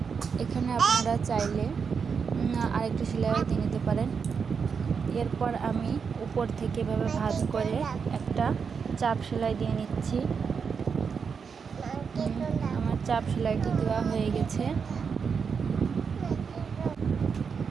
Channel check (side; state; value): left; quieter; 6.0 dB